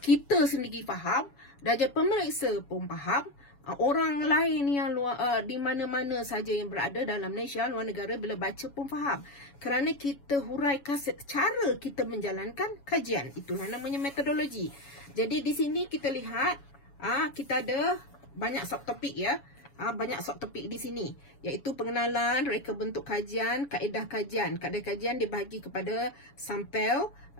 sendiri faham dan pemeriksa pun faham, orang lain yang di mana-mana saja yang berada dalam Malaysia, luar negara, bila baca pun faham. Kerana kita huraikan cara kita menjalankan kajian. Itulah namanya metodologi. Jadi di sini kita lihat kita ada banyak subtopik ya. Banyak subtopik di sini, iaitu pengenalan, reka bentuk kajian, kaedah kajian. Kaedah kajian dibahagi kepada sampel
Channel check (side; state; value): right; late; 7.1 ms